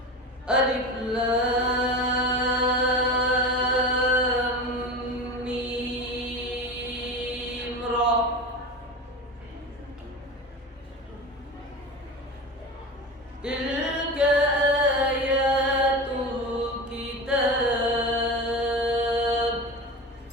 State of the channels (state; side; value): normal; both; correlation 0.28